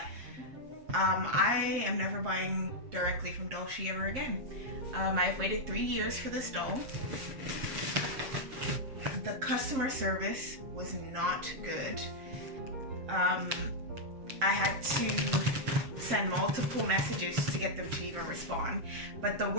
I am never buying directly from Dollshe ever again. I've waited 3 years for this doll. The customer service was not good. I had to send multiple messages to get them to even respond. But the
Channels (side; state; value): left; late; 7.5 ms